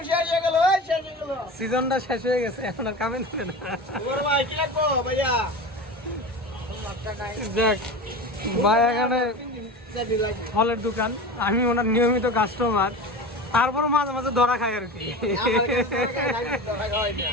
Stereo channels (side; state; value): both; normal; correlation 0.29